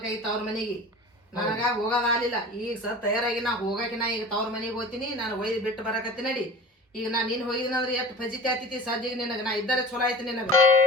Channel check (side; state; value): both; normal; correlation 0.38